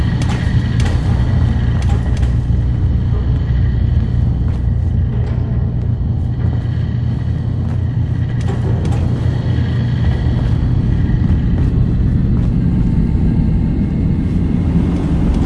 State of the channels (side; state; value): both; identical; correlation 1.00